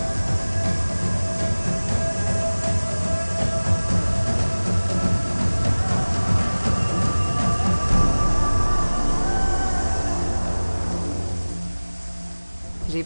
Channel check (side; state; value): both; inverted; correlation -1.00